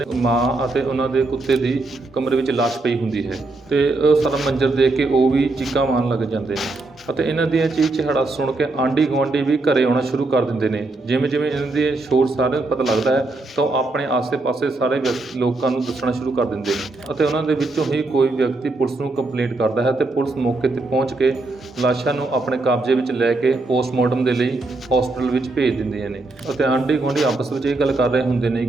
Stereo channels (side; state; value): left; quieter; 3.2 dB